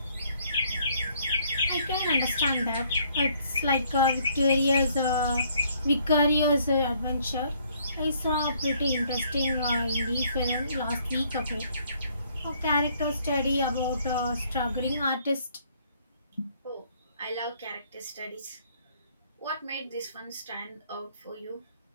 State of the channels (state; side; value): inverted; both; correlation -0.65